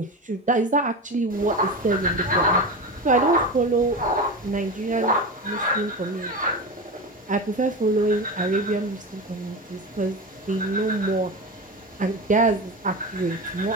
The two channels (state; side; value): normal; both; correlation 0.24